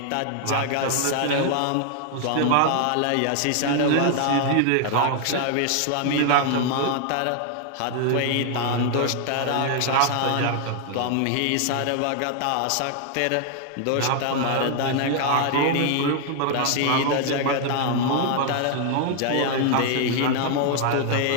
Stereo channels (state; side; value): different; both; correlation 0.00